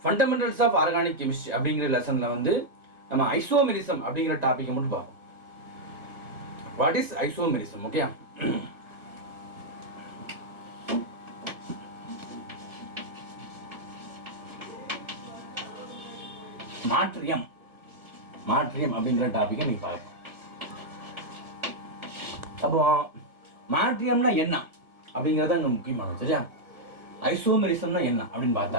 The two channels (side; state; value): left; late; 1.5 ms